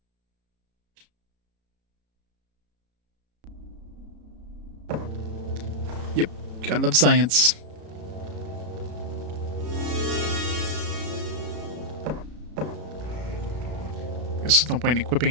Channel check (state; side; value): late; left; 33 ms